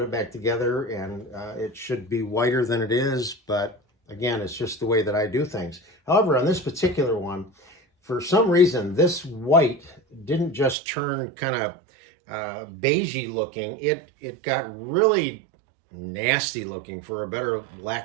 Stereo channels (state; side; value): drops out; left; at 10.8 s